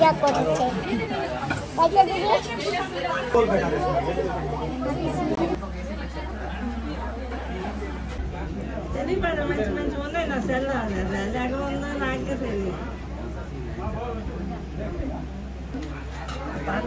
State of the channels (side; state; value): both; identical; correlation 1.00